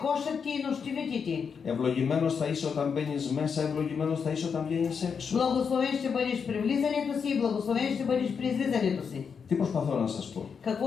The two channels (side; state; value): right; quieter; 6.3 dB